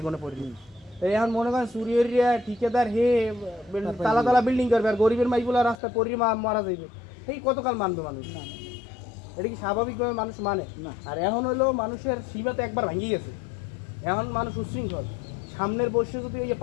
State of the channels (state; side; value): drops out; right; at 5.8 s